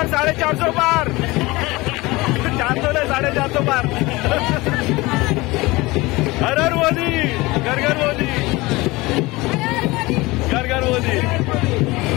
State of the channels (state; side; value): quieter; right; 21.7 dB